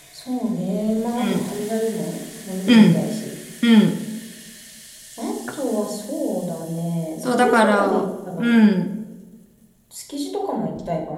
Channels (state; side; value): identical; both; correlation 1.00